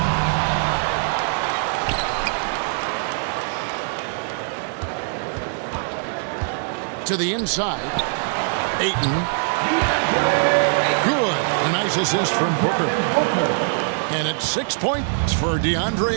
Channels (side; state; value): left; silent; 61 dB below the other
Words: To the inside. Ayton. Good. A nice assist from Booker. And it's 6 points for